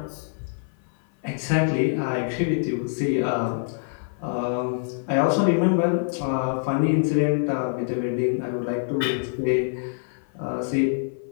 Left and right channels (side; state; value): right; silent; 57 dB below the other